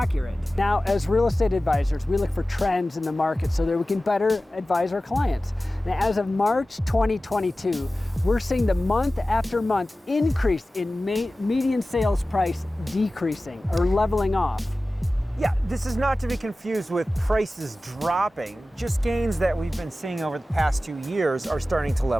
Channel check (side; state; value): both; normal; correlation 0.96